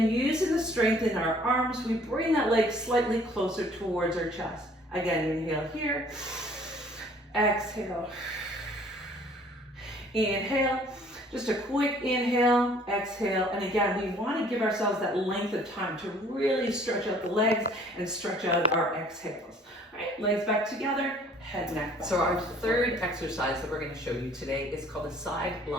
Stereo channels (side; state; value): both; normal; correlation 0.56